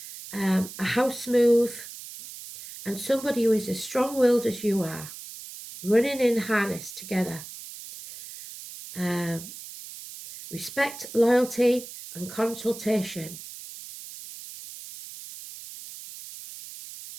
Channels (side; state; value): right; noise; hiss, 13 dB below the sound